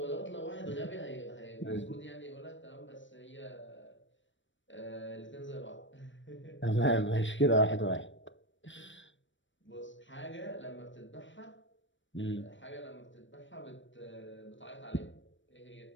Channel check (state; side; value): late; right; 0.55 ms